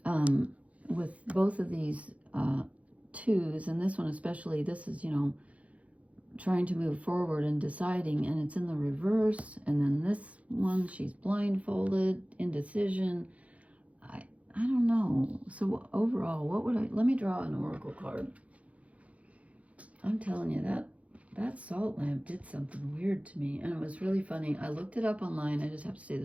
With both of these twos, and this one especially, this is, trying to move forward and deciding, and it's in the reverse. And then this one, she's blindfolded, indecision. I don't know. So overall, let me draw an oracle card. I'm telling you, that salt lamp did something weird to me, and it was really funny. I looked it up online. I just have to say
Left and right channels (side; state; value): left; late; 0.065 ms